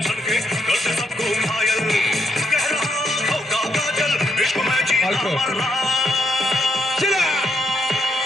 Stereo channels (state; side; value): normal; both; correlation 0.77